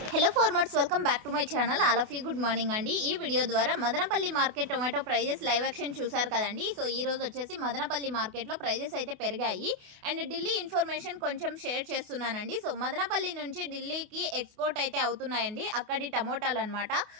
Hello farmers, welcome back to my channel. All of you good morning అండి. ఈ video ద్వారా Madanapalle market tomato prices live action చూసారు కదండి. So ఈ రోజు వచ్చేసి మదనపల్లి మార్కెట్లో ప్రైజెస్ అయితే పెరిగాయి అండ్ ఢిల్లీ ఇన్ఫర్మేషన్ కొంచెం షేర్ చేస్తున్నానండి. సో మదనపల్లి నుంచి ఢిల్లీకి ఎక్స్పోర్ట్ అయితే అవుతున్నాయండి అక్కడి టమోటాలు అనమాట.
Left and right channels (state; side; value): late; left; 28 ms